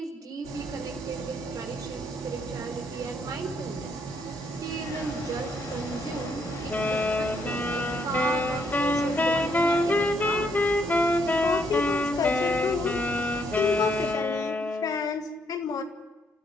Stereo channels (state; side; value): normal; both; correlation 0.72